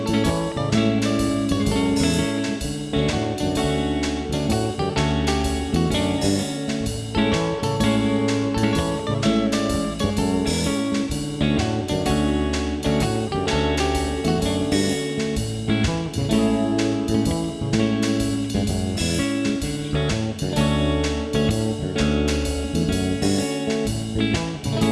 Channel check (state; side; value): identical; both; correlation 1.00